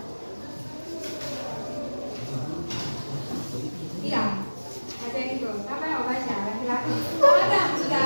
Iya, baca itu. Siapa yang mau baca? Laki-laki. Oh, Adam, sudah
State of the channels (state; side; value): inverted; both; correlation -1.00